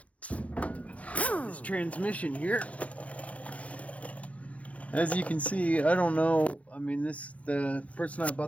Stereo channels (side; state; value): right; late; 0.066 ms